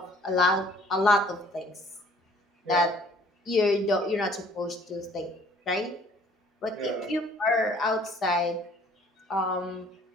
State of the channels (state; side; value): normal; both; correlation 0.57